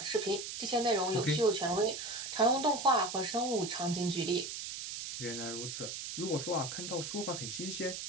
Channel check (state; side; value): noise; right; hiss, 6 dB below the sound